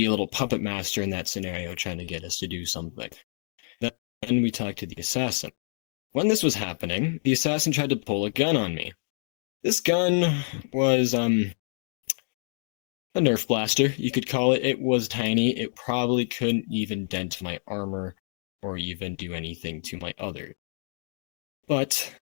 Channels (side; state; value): right; silent; digital silence